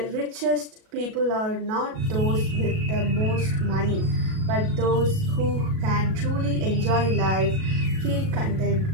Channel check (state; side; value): late; left; 37 ms